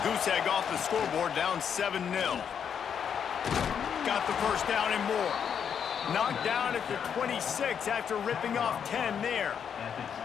goose egg off the scoreboard down 7-0. Got the first down and more. Knocked down at the 26 after ripping off 10 there.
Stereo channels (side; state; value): right; quieter; 7.7 dB